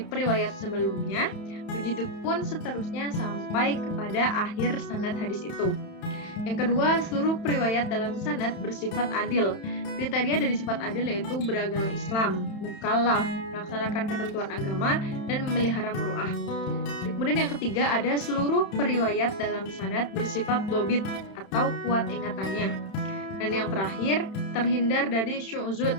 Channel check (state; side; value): late; right; 31 ms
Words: periwayat sebelumnya, begitupun seterusnya sampai kepada akhir sanad hadis itu. Yang kedua, seluruh periwayat dalam sanad bersifat adil. Kriteria dari sifat adil yaitu beragama Islam, mukallaf, melaksanakan ketentuan agama, dan memelihara muru'ah. Kemudian yang ketiga ada seluruh periwayat dalam sanad bersifat dhobit atau kuat ingatannya. Dan yang terakhir, terhindar dari syu'zud